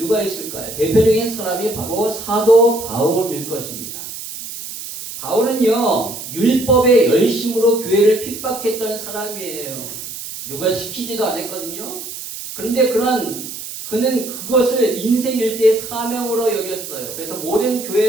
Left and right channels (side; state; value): right; noise; hiss, 10 dB below the sound